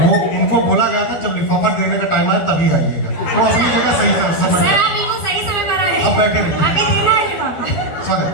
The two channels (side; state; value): right; late; 12 ms